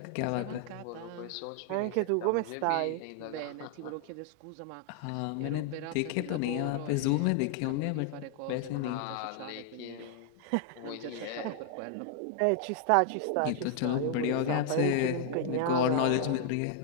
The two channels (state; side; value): different; both; correlation 0.00